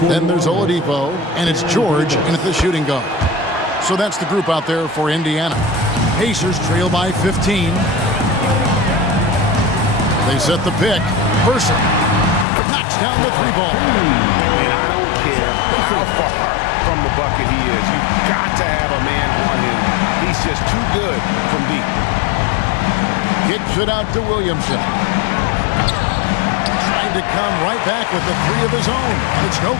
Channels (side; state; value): right; drops out; at 12.5 s